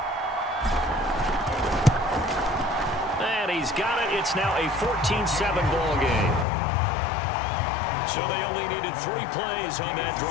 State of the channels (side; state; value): right; drops out; at 6.5 s